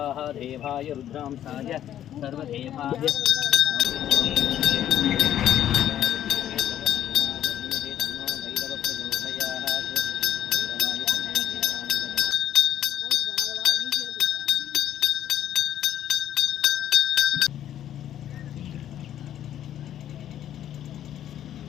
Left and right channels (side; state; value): right; quieter; 11.1 dB